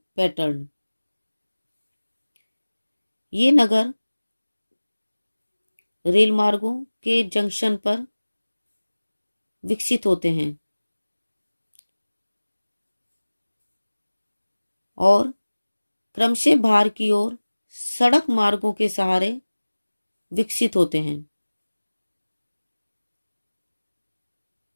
पैटर्न। ये नगर रेल मार्गों के जंक्शन पर विकसित होते हैं और क्रमशः बाहर की ओर सड़क मार्गों के सहारे विकसित होते हैं।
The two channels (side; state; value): both; inverted; correlation -1.00